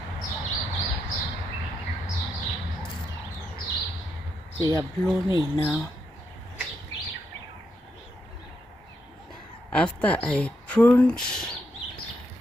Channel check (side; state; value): both; normal; correlation 0.81